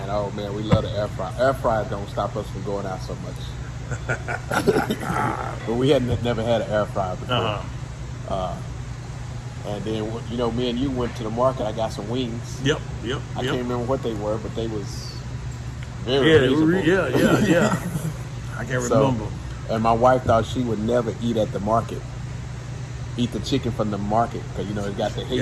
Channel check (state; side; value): identical; both; correlation 1.00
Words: oh man, we love the air fryer. Air fryer don't stop us from going out so much. But we had never had an air fryer before. And then, you know, me and you went to the market. I got some wings. Yep. I can't remember what they were, but they was very reasonable. Yeah. I can't remember. And my wife thought she would never eat at the market. Eat the chicken from the market because, you know, it got the